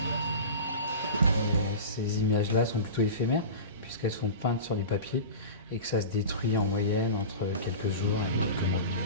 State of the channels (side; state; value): both; inverted; correlation -0.30